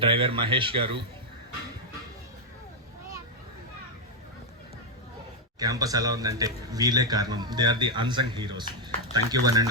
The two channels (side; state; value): both; normal; correlation 0.01